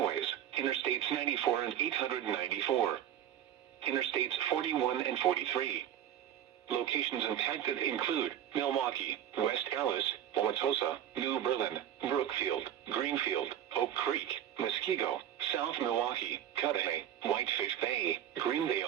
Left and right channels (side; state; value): left; quieter; 10.6 dB